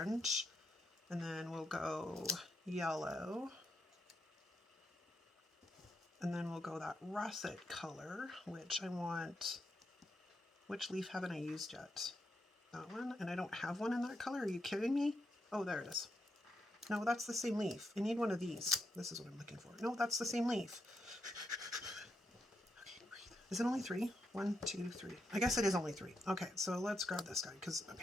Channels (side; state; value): both; normal; correlation 0.82